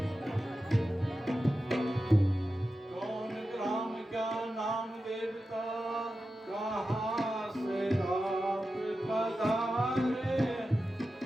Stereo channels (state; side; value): normal; both; correlation 0.92